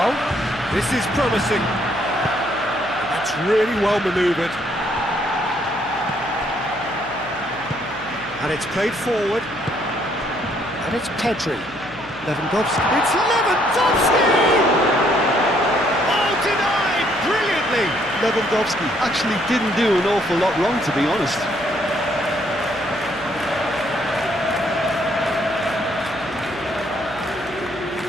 This is promising. That's really well manoeuvred. And it's played forward. And it's Pedri. Lewandowski. It's Lewandowski! Oh, denied! Brilliantly! Lewandowski actually didn't do an awful lot wrong, to be honest.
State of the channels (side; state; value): left; noise; hum, 19 dB below the sound